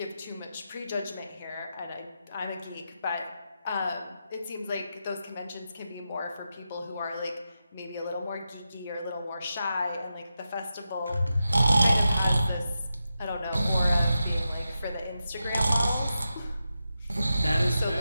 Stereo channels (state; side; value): inverted; both; correlation -0.89